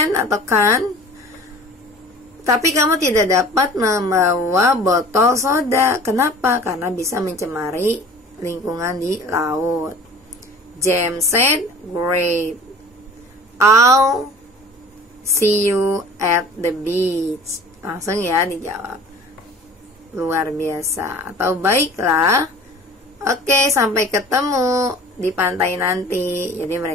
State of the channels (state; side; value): normal; both; correlation 0.44